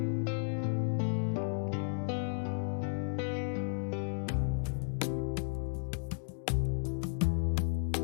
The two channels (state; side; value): silent; right; digital silence